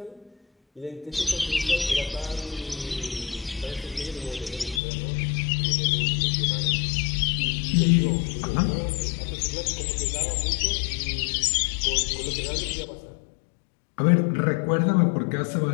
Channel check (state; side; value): drops out; right; at 4.8 s